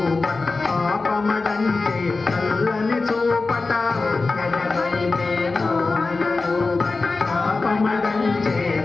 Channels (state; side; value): quieter; right; 3.8 dB